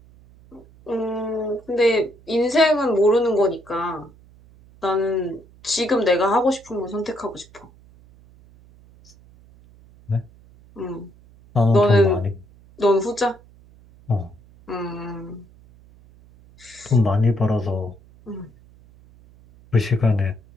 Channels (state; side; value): noise; right; hum, 26 dB below the sound